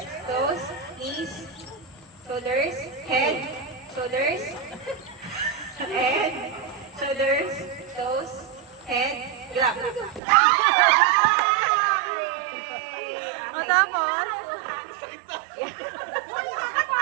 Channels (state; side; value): drops out; left; at 10.2 s